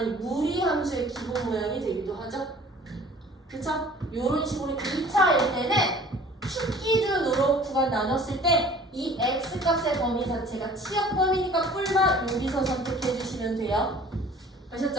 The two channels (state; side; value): normal; both; correlation 0.49